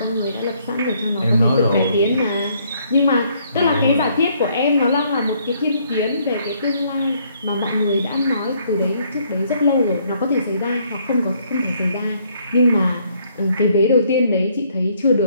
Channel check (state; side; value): inverted; both; correlation -0.67